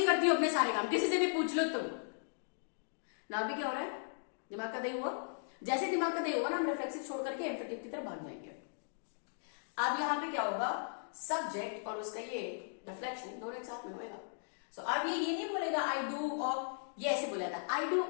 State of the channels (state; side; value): silent; right; digital silence